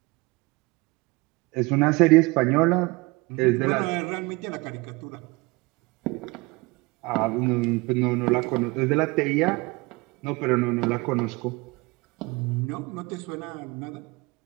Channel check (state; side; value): quieter; left; 24.3 dB